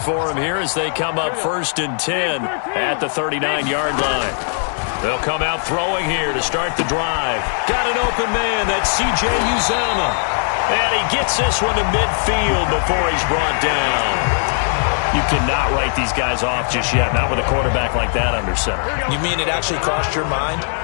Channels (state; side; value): silent; right; digital silence